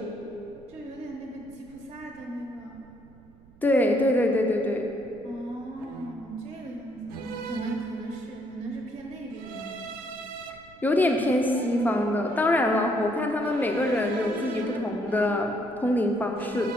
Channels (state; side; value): noise; right; rumble, 25 dB below the sound